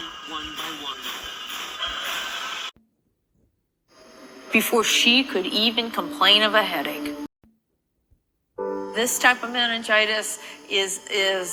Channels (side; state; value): both; identical; correlation 1.00